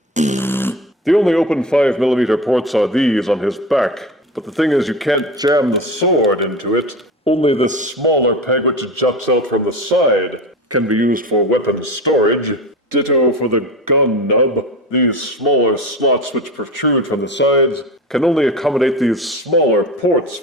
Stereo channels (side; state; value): both; normal; correlation 0.29